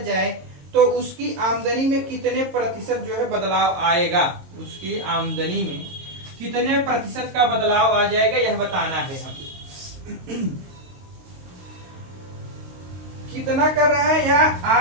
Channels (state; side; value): late; left; 22 ms